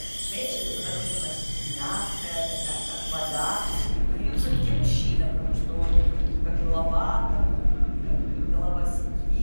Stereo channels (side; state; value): both; inverted; correlation -1.00